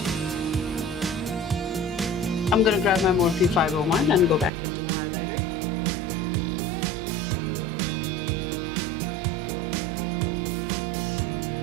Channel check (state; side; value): drops out; left; at 4.5 s